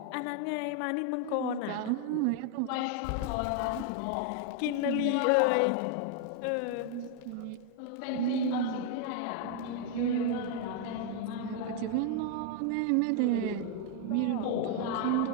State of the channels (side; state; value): both; different; correlation 0.00